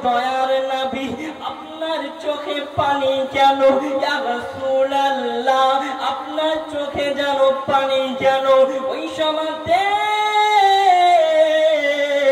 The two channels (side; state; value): both; identical; correlation 1.00